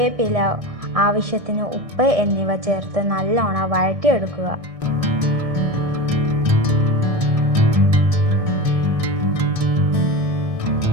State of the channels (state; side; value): late; left; 1.6 ms